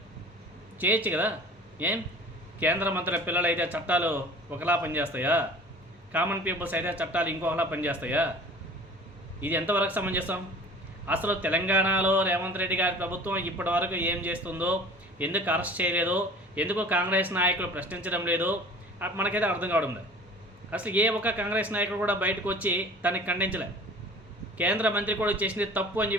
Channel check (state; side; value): normal; both; correlation 0.44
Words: చేయొచ్చు కదా. ఏం కేంద్ర మంత్రుల పిల్లలు అయితే చట్టాలు ఒకలా పనిచేస్తాయా? కామన్ పీపుల్స్ అయితే చట్టాలు ఇంకొకలా పనిచేస్తాయా? ఇది ఎంతవరకు సమంజసం? అసలు తెలంగాణలో రేవంత్ రెడ్డి గారి ప్రభుత్వం ఇప్పటి వరకు ఏం చేస్తుందో, ఎందుకు అరెస్ట్ చేయలేదో, ఎందుకు కాంగ్రెస్ నాయకులు ప్రశ్నించడం లేదో మనకైతే అర్థం కావడం లేదు. అసలు ఏ ఒక్క కాంగ్రెస్ నాయకుడు కూడా బయటకు వచ్చి తనకి ఖండించలే. కేంద్ర మంత్రి కూడా చేసింది తప్పు అని